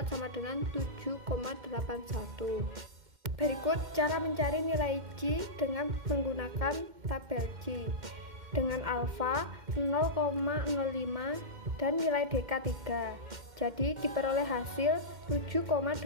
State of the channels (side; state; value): left; late; 2.1 ms